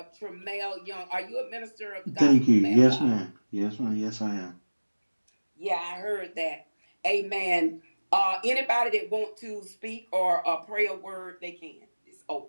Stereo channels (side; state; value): both; inverted; correlation -1.00